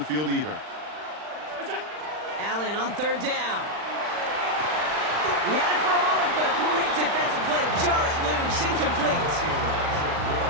field either. Allen on third down. He had it for a moment, but a great defensive play to jar it loose. Incomplete.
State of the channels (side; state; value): left; late; 39 ms